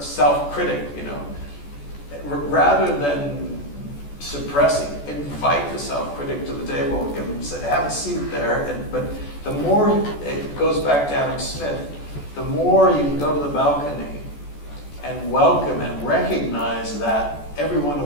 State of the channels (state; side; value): late; right; 14 ms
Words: you know. Rather than suppressing, invite the self-critic to the table, give them, say, have a seat there. But the more it goes back to Adam Smith, the more you can go to the balcony and welcome and recognize that every one